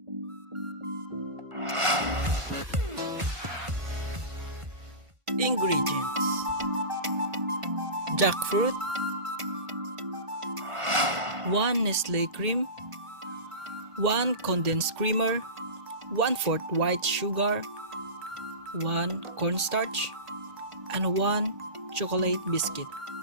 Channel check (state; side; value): late; left; 1.5 ms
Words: Ingredients: jackfruit, 1 Nestle cream, 1 condensed creamer, 1/4 white sugar, 1 cornstarch, and 1 chocolate biscuit.